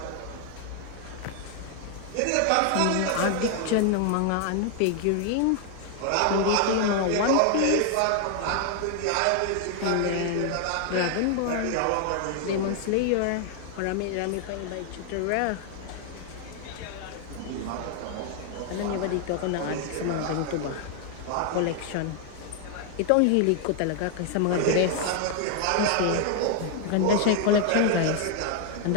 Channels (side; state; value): both; different; correlation 0.00